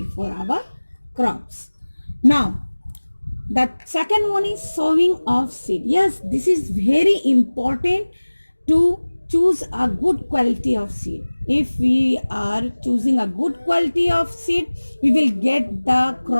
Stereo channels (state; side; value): inverted; both; correlation -1.00